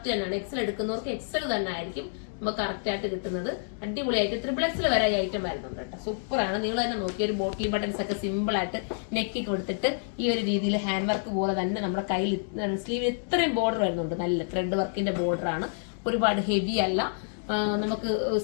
തന്നെയാണ്. എക്സൽ എടുക്കുന്നവർക്ക് എക്സൽ തന്നെ ആയിരിക്കും നമുക്ക് കറക്റ്റ് ആയിട്ട് കിട്ടുന്നത്. അടിപൊളിയായിട്ട് ട്രിപ്പിൾ എക്സൽ വരെ ഈ ഐറ്റം വരുന്നുണ്ട് കേട്ടോ. സൂപ്പറാണ്. നിങ്ങൾ തന്നെ നോക്കിയ ഒരു ബോട്ടിൽ ബട്ടൺസ് ഒക്കെ സിമ്പിൾ ആയിട്ട് നെക്കി കൊടുത്തിട്ട് ഈ ഒരു രീതിയിൽ ഹാൻഡ് വർക്ക് പോലെ തന്നെ നമ്മുടെ കയ്യിൽ സ്ലീവിൽ ഇത്രയും ബോർഡർ വരുന്നുണ്ട്. നല്ല ത്രെഡ് വർക്കിന്റെ ബോർഡർ ആണ്. ഒരുപാട് ഹെവി അല്ല. നമുക്ക്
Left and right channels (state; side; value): silent; right; 59 dB below the other